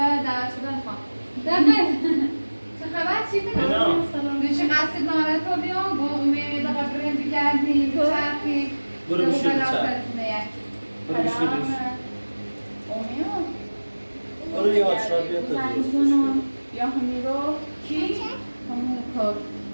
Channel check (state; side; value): inverted; both; correlation -1.00